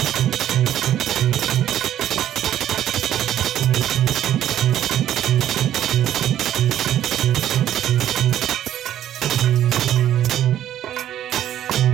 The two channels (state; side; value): quieter; left; 11.6 dB